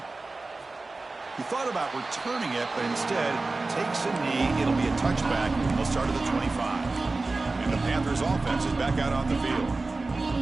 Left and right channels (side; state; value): left; quieter; 3.4 dB